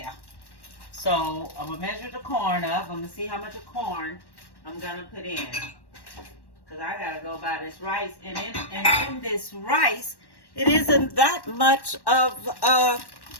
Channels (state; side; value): late; right; 1.1 ms